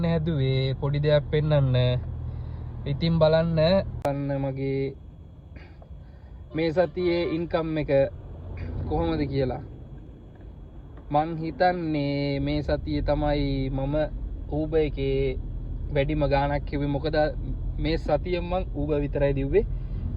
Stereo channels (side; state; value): both; identical; correlation 1.00